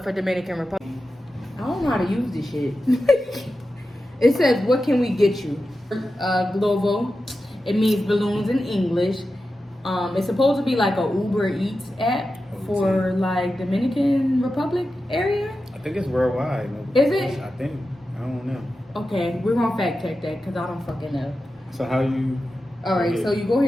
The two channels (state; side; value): normal; both; correlation 0.92